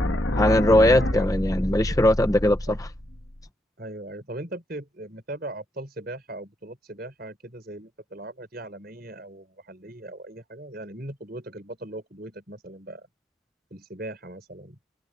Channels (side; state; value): both; normal; correlation 0.78